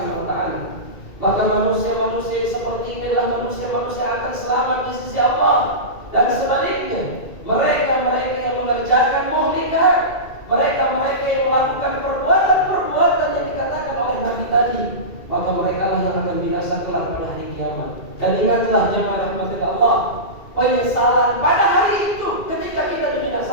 wa taala. Maka manusia-manusia seperti ini adalah manusia-manusia yang akan selamat di sisi Allah. Dan sebaliknya, mereka-mereka yang mengerjakan muhlikat, mereka-mereka yang melakukan perbuatan-perbuatan yang dikatakan oleh Nabi tadi, maka mereka lah yang akan binasa kelak pada hari kiamat. Dan ingatlah jemaah rahmat Allah, penyesalan pada hari itu ketika kita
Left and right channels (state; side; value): late; right; 2.3 ms